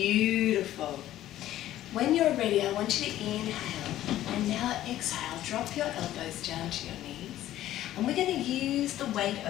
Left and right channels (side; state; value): right; quieter; 13.5 dB